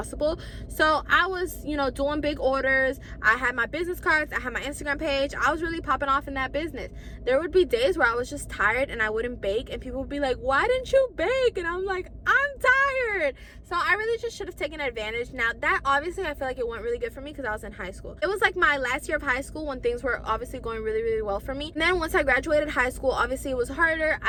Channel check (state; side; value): identical; both; correlation 1.00